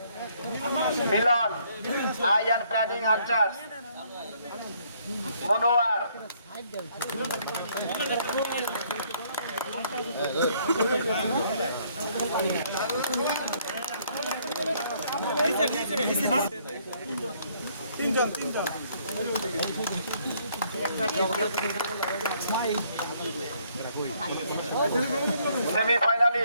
আইয়ান প্ল্যানিং হান্টার্স। মনোয়ার। তিনজন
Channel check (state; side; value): inverted; both; correlation -0.66